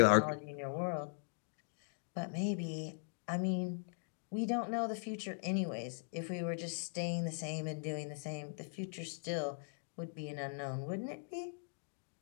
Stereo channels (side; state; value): right; silent; digital silence